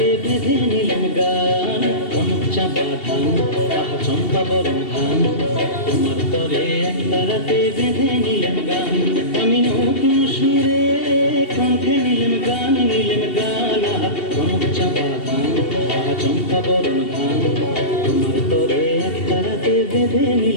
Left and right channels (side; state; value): right; late; 2.7 ms